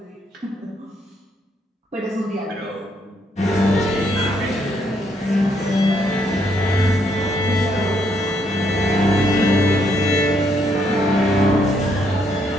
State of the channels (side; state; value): both; normal; correlation 0.73